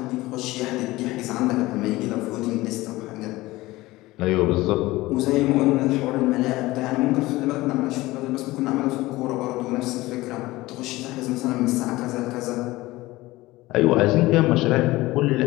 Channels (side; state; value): right; quieter; 19.0 dB